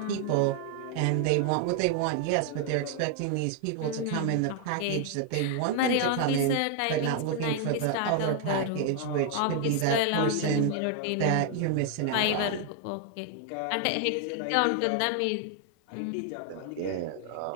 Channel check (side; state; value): both; different; correlation 0.00